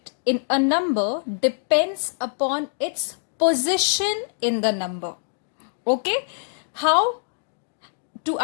in a number depends upon its position in the number. Okay, how to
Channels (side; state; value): right; silent; digital silence